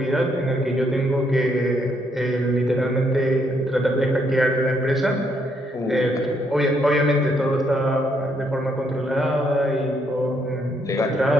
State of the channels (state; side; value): normal; both; correlation 0.73